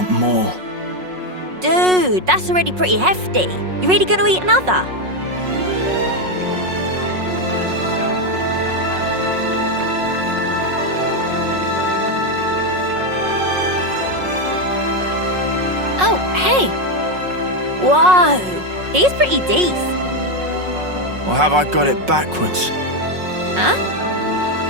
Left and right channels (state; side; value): late; left; 5.5 ms